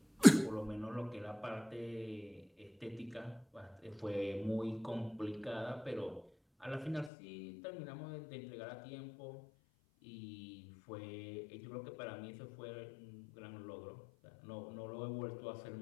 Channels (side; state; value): right; drops out; at 7.1 s